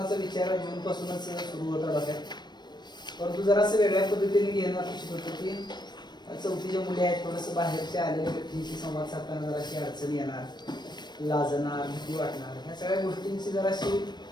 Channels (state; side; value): late; right; 0.21 ms